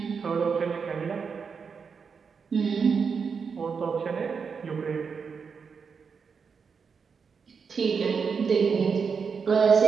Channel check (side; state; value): left; quieter; 5.8 dB